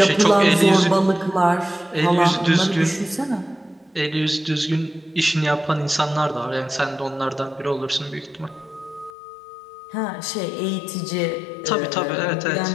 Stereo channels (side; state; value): right; drops out; at 9.1 s